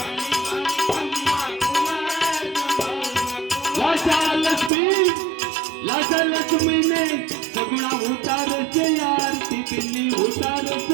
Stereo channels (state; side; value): drops out; left; at 4.7 s